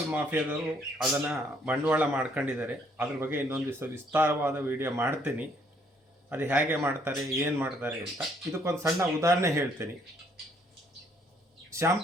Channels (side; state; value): both; normal; correlation 0.66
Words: ಮಾಫಿಯಾದವರು ಅದನ್ನು ಬಂಡವಾಳ ಮಾಡ್ಕೊಂಡಿದ್ದಾರೆ. ಅದ್ರ ಬಗ್ಗೆ ಇನ್ನೊಂದು ದಿವಸ ವಿಸ್ತಾರವಾದ ವಿಡಿಯೋ ಮಾಡ್ತೀನಿ. ಅದು ಹೇಗೆ ಮಾಡ್ತಾರೆ, ಏನು ಮಾಡ್ತಾರೆ ಅಂತ. ಇದಕ್ಕೊಂದು ಸಣ್ಣ ಉದಾಹರಣೆ ಹೇಳ್ತೀನಿ.